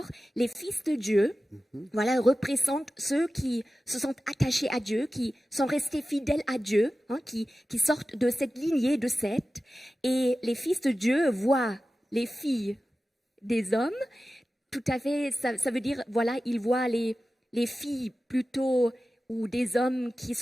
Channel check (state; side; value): normal; both; correlation 0.94